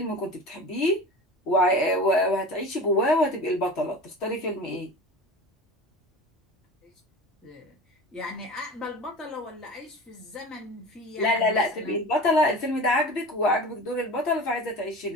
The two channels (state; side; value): normal; both; correlation 0.35